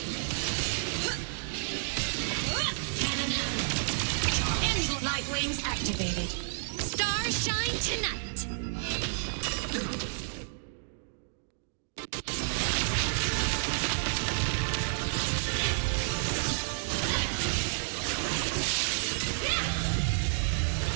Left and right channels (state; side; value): silent; left; digital silence